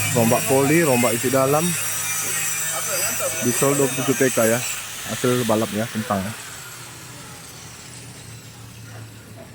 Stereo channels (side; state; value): both; identical; correlation 1.00